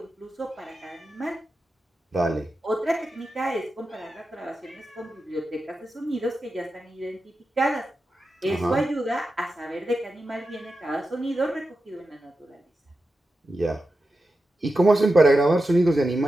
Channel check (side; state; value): both; normal; correlation 0.90